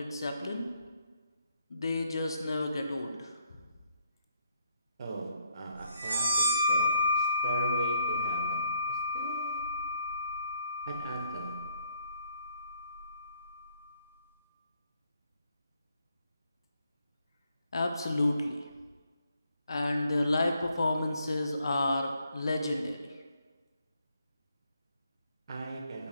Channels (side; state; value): both; inverted; correlation -0.70